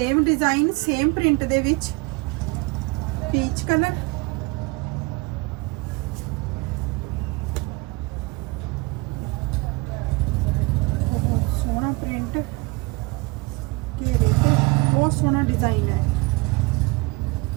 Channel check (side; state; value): left; quieter; 25.0 dB